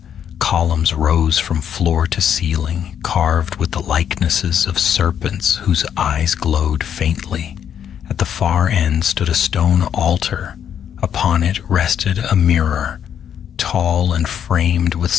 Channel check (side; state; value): right; quieter; 8.9 dB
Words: Columns rose from floor to ceiling, carved with the likenesses of serpents whose eyes glowed faintly. At the far end stood a stone altar. Upon it rested a mirror, tall and framed with